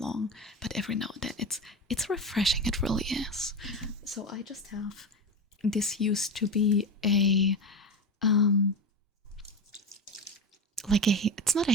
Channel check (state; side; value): normal; both; correlation 0.21